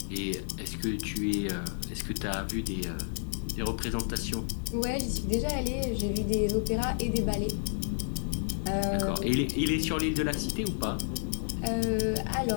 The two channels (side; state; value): right; silent; digital silence